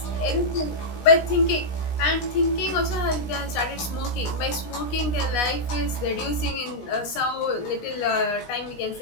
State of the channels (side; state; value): right; late; 17 ms